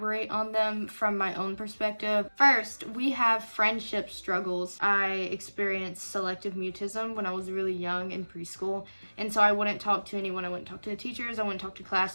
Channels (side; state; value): both; inverted; correlation -1.00